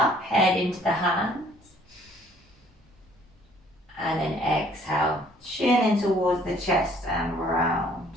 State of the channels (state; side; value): normal; both; correlation 0.59